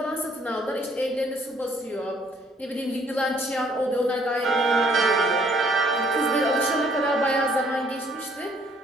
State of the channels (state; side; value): normal; both; correlation 0.63